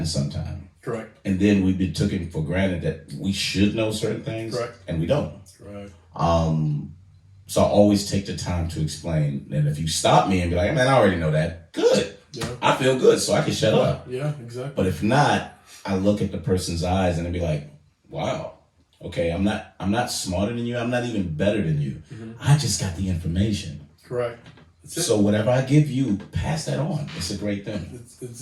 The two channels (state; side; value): identical; both; correlation 1.00